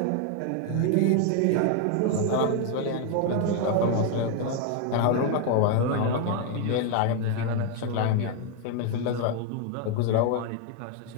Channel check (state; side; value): different; both; correlation 0.01